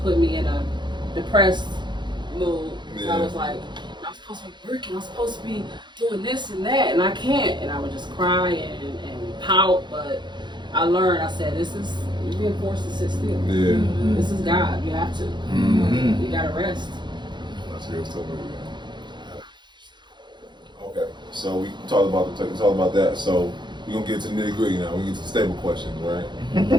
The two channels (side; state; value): left; late; 0.22 ms